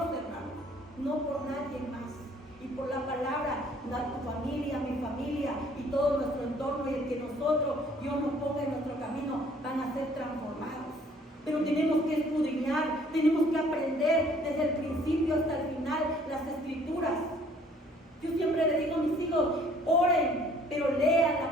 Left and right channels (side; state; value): both; normal; correlation 0.59